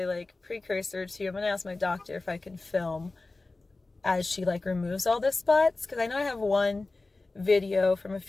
precursor to, I'm going to ask my doctor if I can film as she removes all the spots. Cause I know I have one video from a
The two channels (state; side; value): quieter; right; 3.4 dB